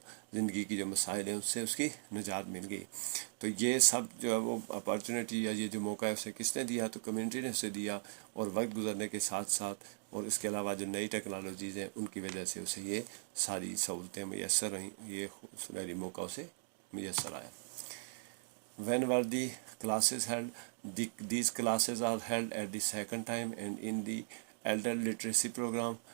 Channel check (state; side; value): silent; left; digital silence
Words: ज़िंदगी की जो मसाइल हैं उससे उसकी निजात मिल गई। तो ये सब जो है वो अपॉर्चुनिटी या ये जो मौका है उसे किसने दिया, तो कम्युनिटी ने उसे दिया। और वक्त गुजरने के साथ साथ और इसके अलावा जो नई टेक्नोलॉजीज़ हैं उनकी वजह से उसे ये सारी सहूलतें मैसर रहीं, ये सुनहरी मौका उसे मैसर आया। When were the classes held? These classes are held at the second time and in the elder literacy program.